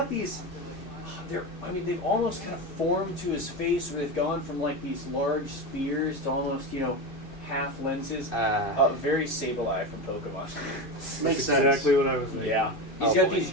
these. They've almost kind of formed to his face, where they've gone from like these large spears to almost, half lenses. Very Sableye from Pokemon. Makes Exactly what I was thinking. Yeah. He's Oh, got boy. these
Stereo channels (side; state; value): right; late; 3.0 ms